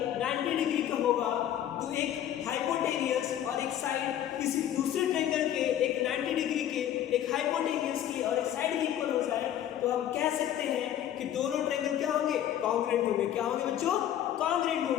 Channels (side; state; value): right; quieter; 11.1 dB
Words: 90 डिग्री का होगा, तो एक हाइपोटेनियस और एक साइड किसी दूसरे ट्रायंगल के एक 90 डिग्री के, एक हाइपोटेनियस की और एक साइड की इक्वल हो जाए, तो हम कह सकते हैं कि दोनों ट्रायंगल क्या होंगे, कॉन्ग्रुएंट होंगे। क्या होंगे बच्चों, कॉन्ग्रुएंट